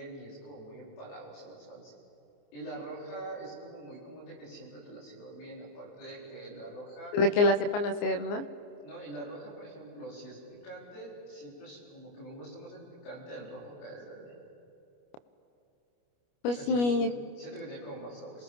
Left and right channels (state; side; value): late; right; 29 ms